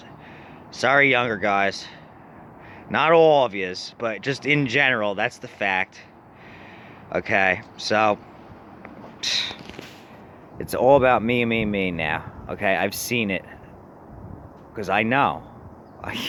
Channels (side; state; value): both; identical; correlation 1.00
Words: Sorry, younger guys. Not all of yous, but just in general, that's the fact. Okay, so it's all about me, me, me now. Okay, I've seen it. Because I know. I